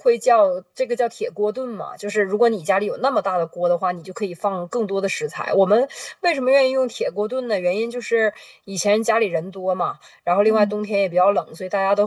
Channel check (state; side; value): identical; both; correlation 1.00